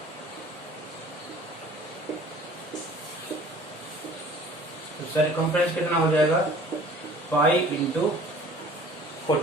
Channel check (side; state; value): both; normal; correlation 0.49